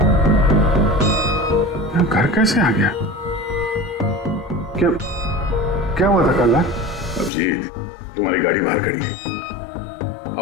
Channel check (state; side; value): drops out; right; at 7.3 s